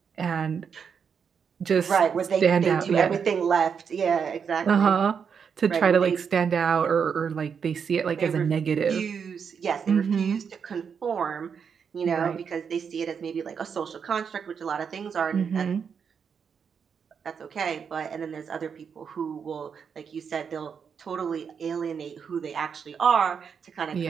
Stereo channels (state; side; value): quieter; left; 6.7 dB